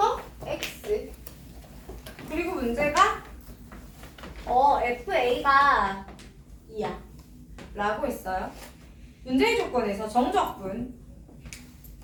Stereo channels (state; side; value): identical; both; correlation 1.00